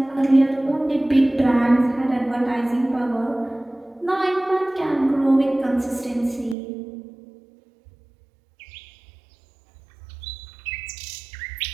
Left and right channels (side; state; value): left; drops out; at 6.6 s